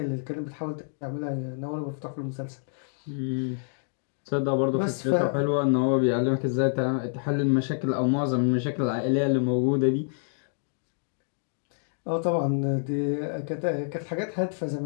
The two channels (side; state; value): right; silent; digital silence